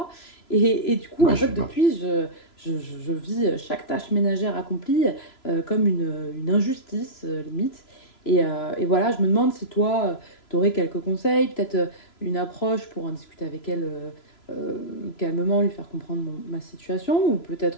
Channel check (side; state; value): right; late; 3.0 ms